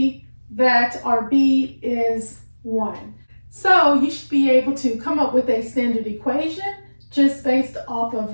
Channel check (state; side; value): inverted; both; correlation -1.00